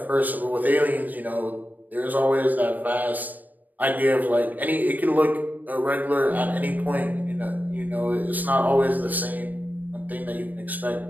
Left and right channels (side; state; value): left; late; 0.084 ms